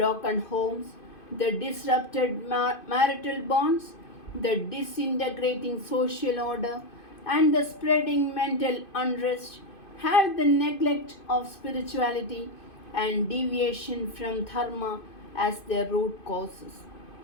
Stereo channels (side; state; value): right; late; 2.5 ms